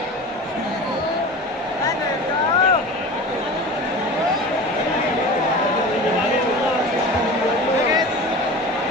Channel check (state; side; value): normal; both; correlation 0.34